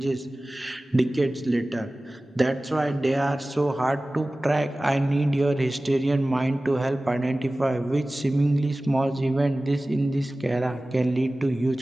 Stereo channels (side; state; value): both; normal; correlation 0.97